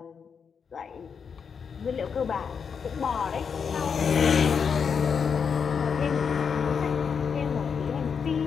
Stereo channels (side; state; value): right; quieter; 6.4 dB